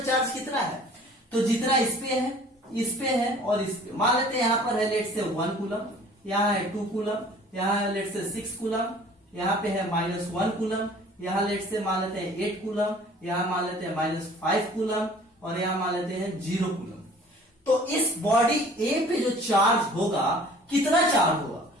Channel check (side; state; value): both; normal; correlation 0.50